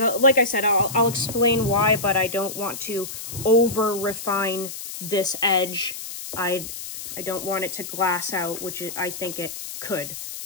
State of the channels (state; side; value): noise; left; hiss, 9 dB below the sound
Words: I said, I'll explain why, but I don't want to over refine this edge. I don't want it to glass out, which I think it could.